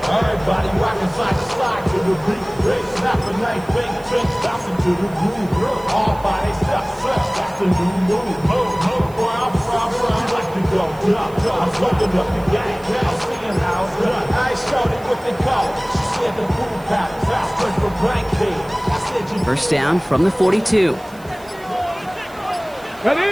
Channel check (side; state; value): right; noise; hiss, 24 dB below the sound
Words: First down from the 42.